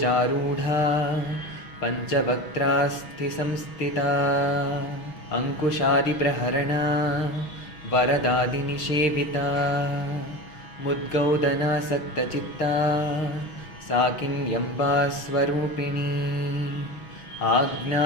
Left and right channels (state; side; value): late; right; 6.2 ms